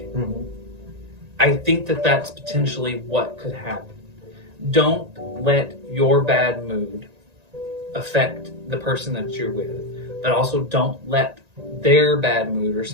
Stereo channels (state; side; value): late; left; 1.9 ms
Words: I think that that's potentially what could happen. Don't let your bad mood affect the person that you're with, but also don't let their bad mood or